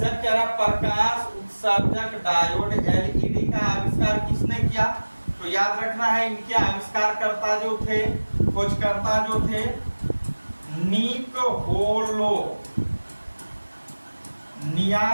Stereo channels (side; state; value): both; inverted; correlation -1.00